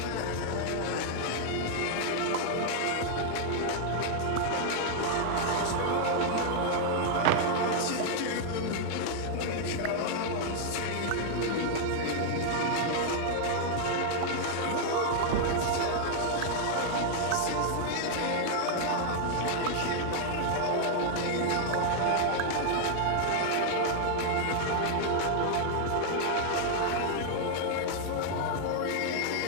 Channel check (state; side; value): different; both; correlation 0.00